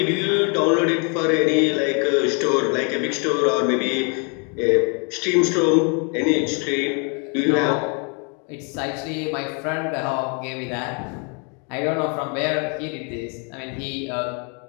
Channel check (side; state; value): right; quieter; 36.6 dB